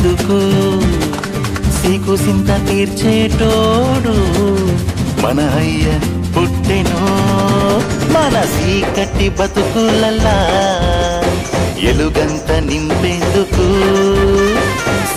సీకు సింత తీర్చేటోడు మన అయ్య పుట్టెను మన చీకటి బతుకులల్లా ఎలుగంత నింపేందుకు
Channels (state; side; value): identical; both; correlation 1.00